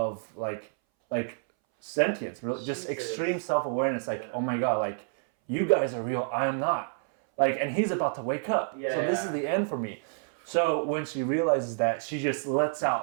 like sentience, really, just extreme self-awareness. Like, oh my God, like you guys are real, I am not. Like, and he's about to wake up. So this is the end for me. So when she realizes that, she just lets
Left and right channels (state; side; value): silent; left; 59 dB below the other